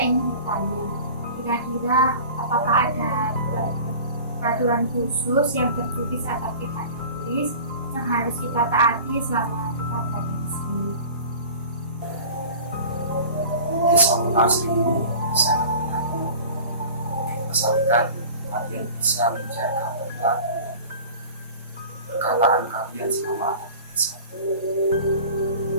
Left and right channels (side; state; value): both; inverted; correlation -0.40